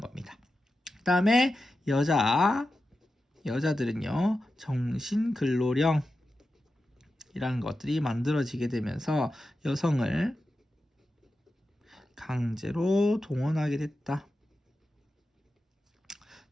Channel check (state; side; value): normal; both; correlation 0.91